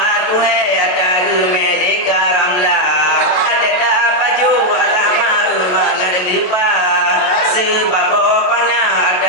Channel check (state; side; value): late; right; 28 ms